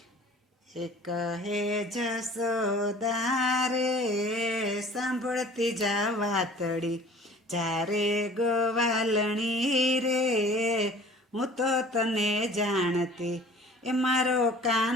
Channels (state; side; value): normal; both; correlation 0.48